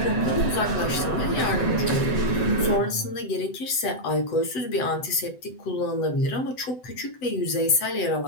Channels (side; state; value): right; late; 7.9 ms